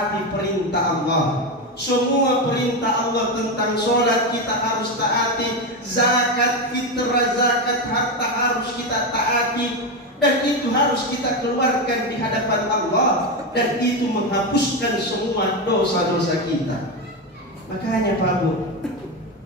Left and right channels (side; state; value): both; normal; correlation 0.13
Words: perintah Allah. Semua perintah Allah tentang sholat kita harus taati, zakat, fitrah, zakat, harta harus kita taati. Dan itu harus kita keluarkan di hadapan Allah, dan itu menghapuskan semua dosa-dosa kita. Makanya Pak Bu,